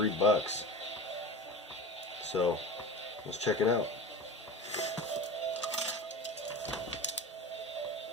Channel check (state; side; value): normal; both; correlation 0.31